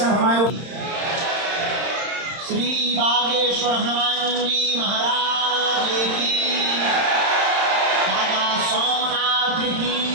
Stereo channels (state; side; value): late; left; 31 ms